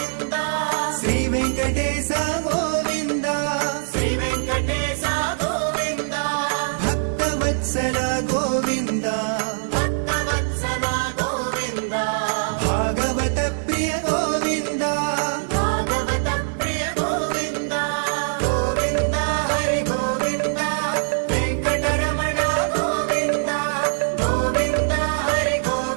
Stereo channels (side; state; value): left; silent; 58 dB below the other